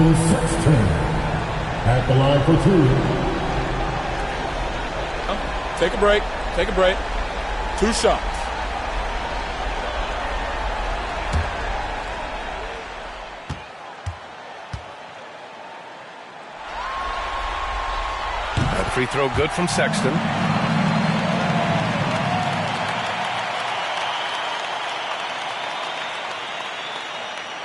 Sexton. At the line for 2. Take a break. Take a break. 2 shots. Free throw good from Sexton.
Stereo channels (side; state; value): both; identical; correlation 1.00